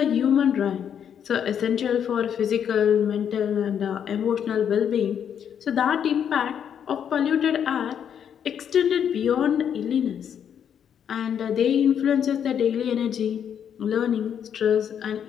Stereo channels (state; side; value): quieter; right; 8.5 dB